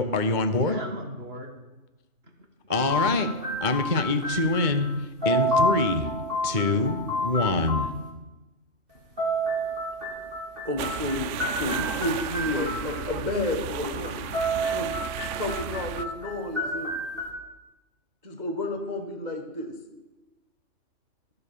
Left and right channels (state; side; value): late; left; 3.4 ms